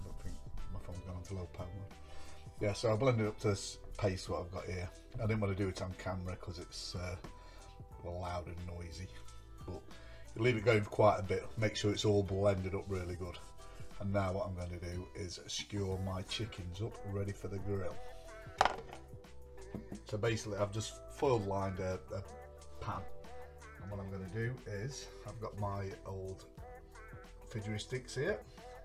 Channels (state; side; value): identical; both; correlation 1.00